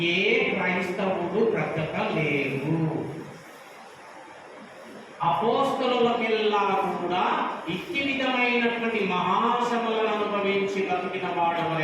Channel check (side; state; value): both; identical; correlation 1.00